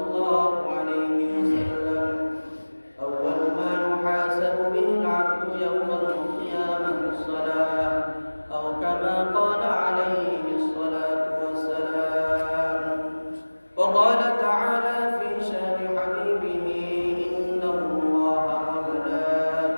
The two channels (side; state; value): both; inverted; correlation -1.00